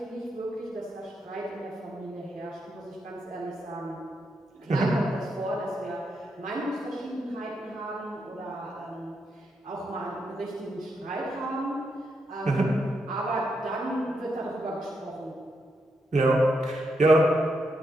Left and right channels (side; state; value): both; normal; correlation 0.81